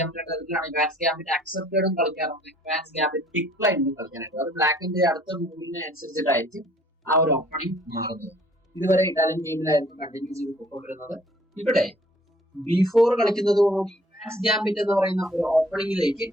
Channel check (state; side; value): normal; both; correlation 0.57